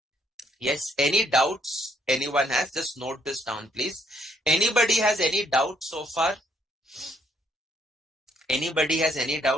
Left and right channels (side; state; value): both; normal; correlation 0.69